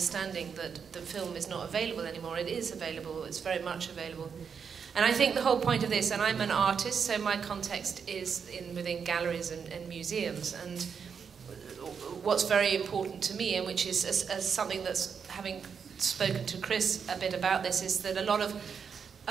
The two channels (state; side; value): quieter; left; 6.6 dB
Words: that the film is not available anymore. It is available, it's very much available. And I think the whole point of this, and I'm an artist, so my context is within galleries and museums, and what's very important to me, and which is as something that's having spoken to Chris a bit about this, is that a lot of